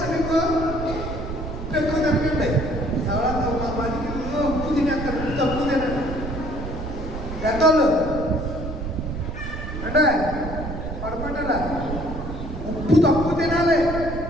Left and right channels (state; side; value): noise; right; rumble, 7 dB below the sound